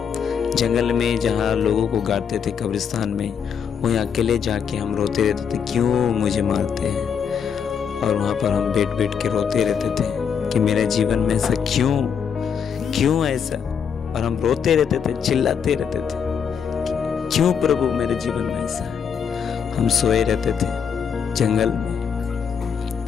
जंगल में जहाँ लोगों को गाड़ते थे, कब्रिस्तान में, वहीं अकेले जाके हम रोते रहते थे, क्यों मुझे मारते हैं। और वहाँ पर हम बैठ बैठ के रोते रहते थे कि मेरे जीवन में ऐसा क्यों ऐसा। और हम रोते रहते थे, चिल्लाते रहते थे, क्यों प्रभु मेरे जीवन में ऐसा। हम सोए रहते थे जंगल में,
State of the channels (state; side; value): quieter; right; 7.1 dB